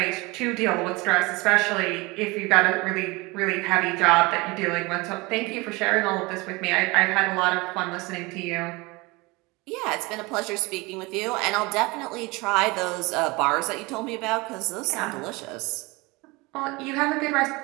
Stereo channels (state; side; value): quieter; left; 24.4 dB